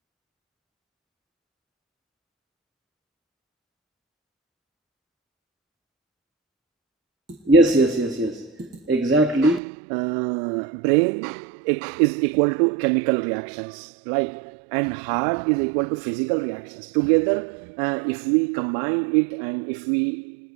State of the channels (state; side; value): drops out; left; at 9.6 s